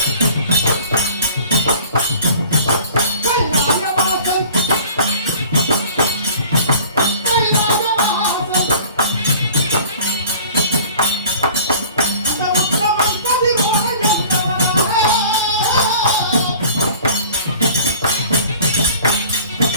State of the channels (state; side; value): inverted; both; correlation -0.46